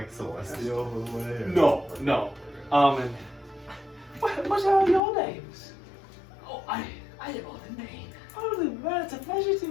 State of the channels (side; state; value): right; drops out; at 5.0 s